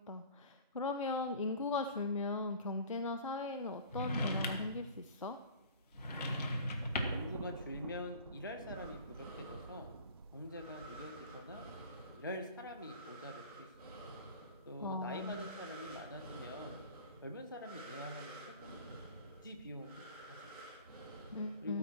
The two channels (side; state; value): both; inverted; correlation -0.43